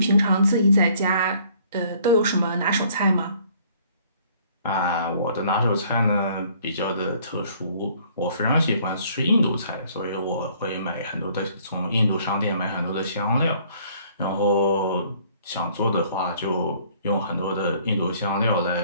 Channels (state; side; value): inverted; both; correlation -0.59